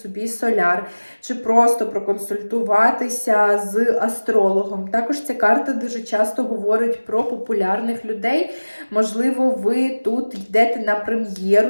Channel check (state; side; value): inverted; both; correlation -1.00